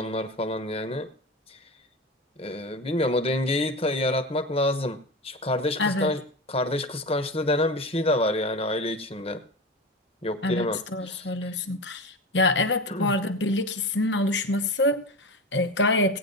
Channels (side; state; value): both; normal; correlation 0.25